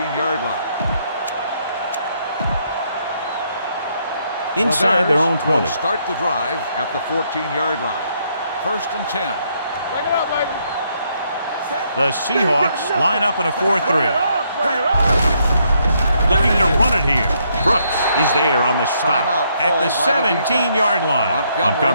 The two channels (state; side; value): inverted; both; correlation -0.73